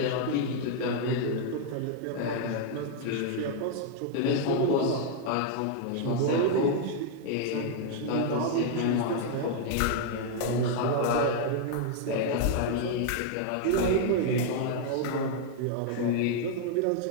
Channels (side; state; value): both; different; correlation 0.00